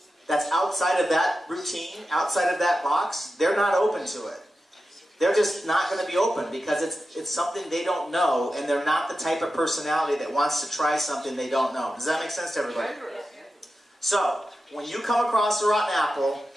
that's outside of that routine, outside of that box, they're not open to it. They're just not going to be open because it's something they don't know, and they're not the type of personality that wants to try something they don't know. Does that make sense to everybody? So, when you come across a rotten apple,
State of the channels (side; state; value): both; normal; correlation 0.91